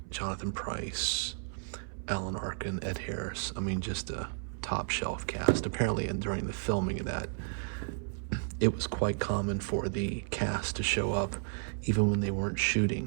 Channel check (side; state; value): left; silent; 56 dB below the other